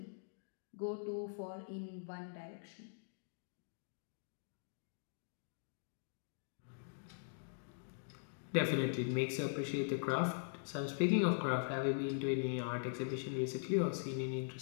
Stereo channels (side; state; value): right; silent; digital silence